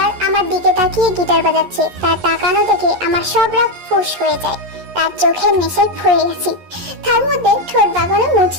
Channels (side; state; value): left; late; 11 ms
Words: আমার দিকে তাকিয়ে গিটার বাজাচ্ছে, তার তাকানো দেখে আমার সব রাগ ফুস হয়ে যায়। তার চোখের নেশায় পড়ে গেছি, তার মধ্যে ঠোঁট বাগানো